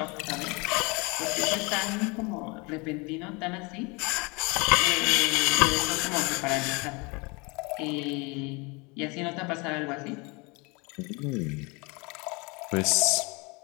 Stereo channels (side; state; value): right; quieter; 28.4 dB